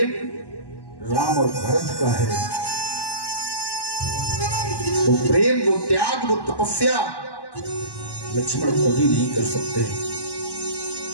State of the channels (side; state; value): right; late; 1.1 ms